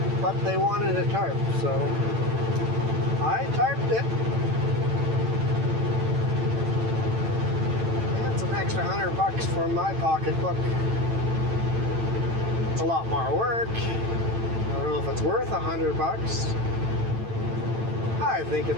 But they wanted a tarp, so I tarped it. That's an extra $100 for my pocketbook. It's a lot more work. I don't know if it's worth $100. I think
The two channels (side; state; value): left; late; 8.9 ms